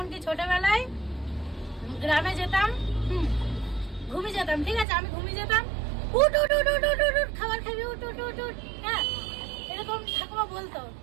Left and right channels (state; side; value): drops out; left; at 4.9 s